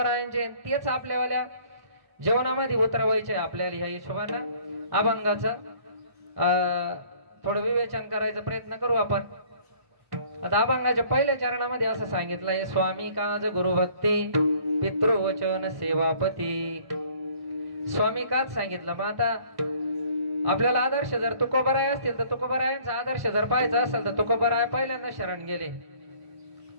तेच आपल्यावाल्या जीवनामध्ये उतरवायचे आपल्याला ह्या हिशोबानं अभंगाचं थोडं विवेचन करायचा प्रयत्न करू आपण. आता अभंगाच्या पहिल्या चरणामध्ये असं सांगितलंय, स्वामी काज गुरुभक्ती पितृवचन सेवापती. स्वामी काच सांगितलं. मग आता आपल्याला आदर्श जर तुकोबराय असतील तर तुकोबरायांचा आदर्श जर पाहायचा असेल तर तुकोबराय पहिल्यांदा शरण गेले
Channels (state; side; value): late; left; 1.5 ms